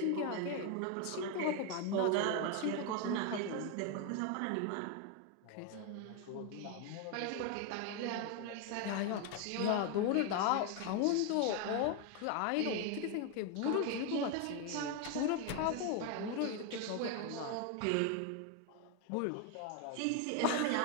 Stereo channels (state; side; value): different; both; correlation 0.01